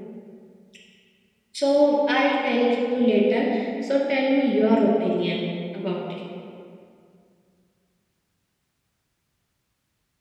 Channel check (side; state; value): both; identical; correlation 1.00